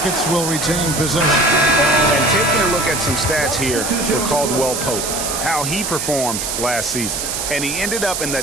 will retain possession. And taking a look at some stats here for Caldwell Pope, how he performed last season. And he ended up in the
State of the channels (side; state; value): right; noise; hiss, 3 dB below the sound